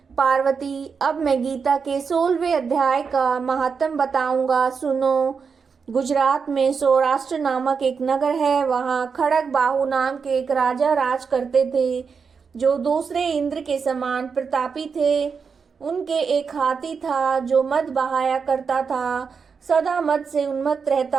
पार्वती, अब मैं गीता के 16वें अध्याय का महात्म बताऊंगा, सुनो। गुजरात में सौराष्ट्र नामक एक नगर है। वहाँ खड़ग बाहु नाम के एक राजा राज करते थे, जो दूसरे इंद्र के समान प्रतापी थे। उनके एक हाथी था जो मद बहाया करता था, सदा मद से उन्मत्त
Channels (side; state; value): left; quieter; 5.7 dB